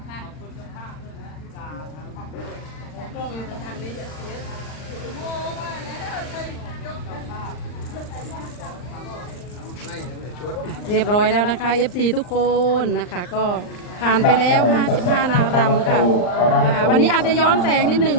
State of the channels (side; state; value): right; late; 39 ms